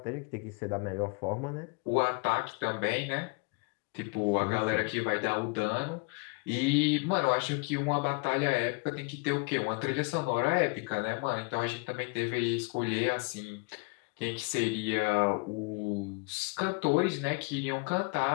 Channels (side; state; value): right; quieter; 30.5 dB